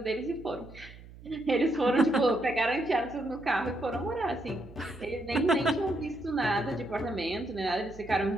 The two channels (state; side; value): noise; right; hum, 18 dB below the sound